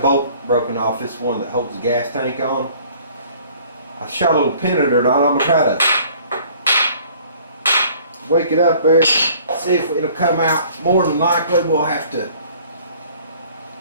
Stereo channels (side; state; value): both; inverted; correlation -0.54